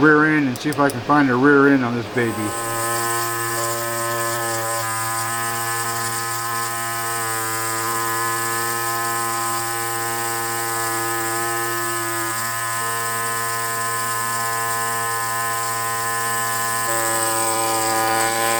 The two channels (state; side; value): identical; both; correlation 1.00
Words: end and see if I can find a rear end on this baby.